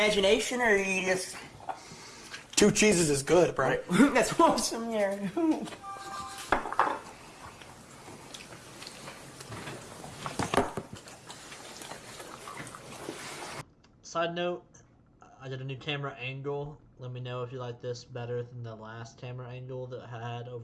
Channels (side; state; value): both; identical; correlation 1.00